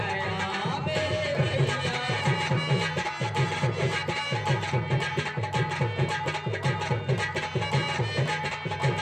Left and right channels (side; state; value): both; identical; correlation 1.00